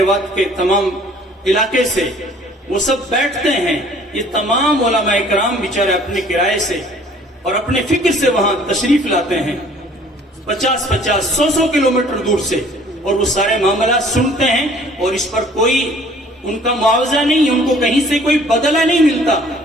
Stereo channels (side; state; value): both; normal; correlation 0.54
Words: کے تمام علاقے سے وہ سب بیٹھتے ہیں۔ یہ تمام علماء کرام بیچارے اپنے کرائے سے اور اپنے فکر سے وہاں تشریف لاتے ہیں، 50، 100 کلومیٹر دور سے، اور وہ سارے معاملات سنتے ہیں اور اس پر کوئی ان کا معاوضہ نہیں، ان کو کہیں سے کوئی بدلہ نہیں ملتا،